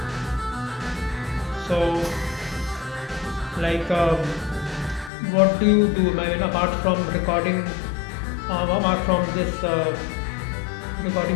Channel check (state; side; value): drops out; right; at 5.1 s